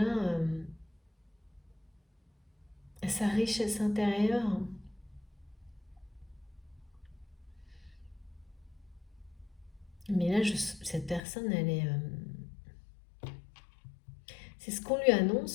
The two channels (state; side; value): drops out; right; at 11.2 s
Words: sa richesse intérieure, mais là, cette personne, elle est... c'est ce qu'on lui